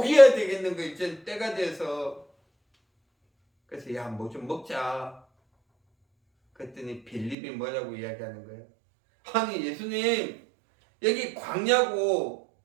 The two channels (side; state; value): left; drops out; at 7.4 s